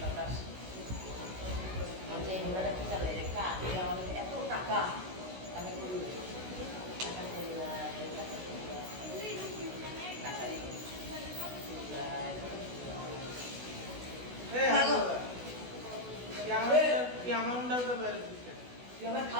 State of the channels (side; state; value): left; late; 16 ms